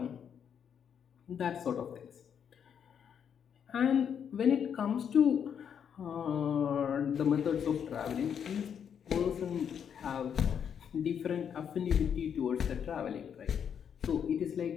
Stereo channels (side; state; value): right; quieter; 8.0 dB